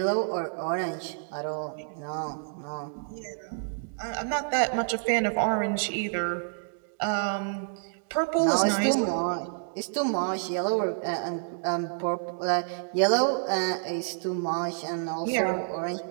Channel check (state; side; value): silent; left; digital silence